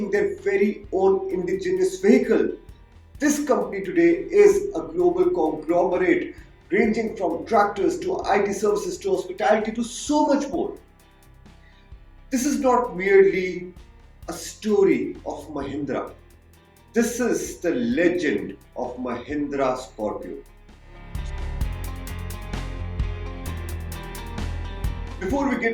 their very own indigenous vehicle, this company today is a global conglomerate ranging from tractors to IT services to hospitality to so much more. This is not merely a story of Mahindra. This is the legend of Mahindra Scorpio. Before we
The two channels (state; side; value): identical; both; correlation 1.00